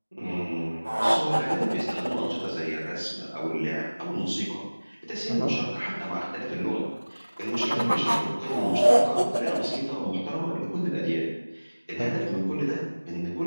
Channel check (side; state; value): both; inverted; correlation -1.00